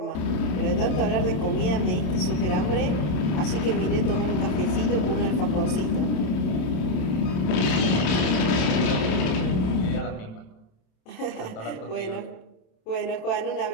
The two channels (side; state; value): right; late; 27 ms